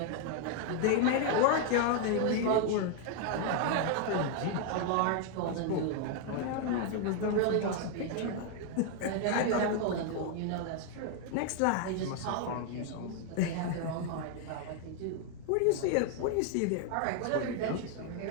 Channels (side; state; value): both; different; correlation 0.00